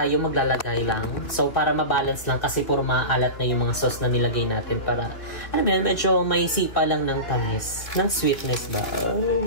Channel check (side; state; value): right; late; 3.2 ms